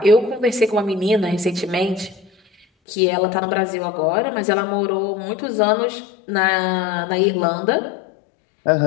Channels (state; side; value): drops out; right; at 2.7 s